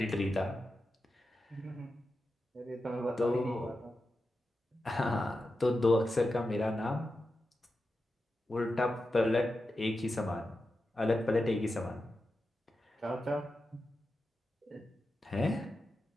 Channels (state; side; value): normal; both; correlation 0.90